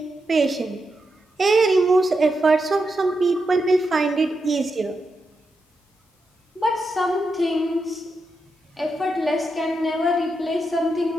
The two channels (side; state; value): both; normal; correlation 0.86